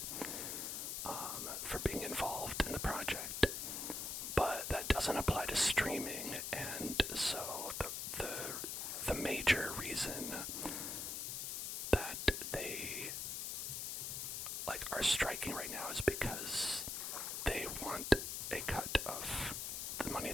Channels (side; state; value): left; noise; hiss, 3 dB below the sound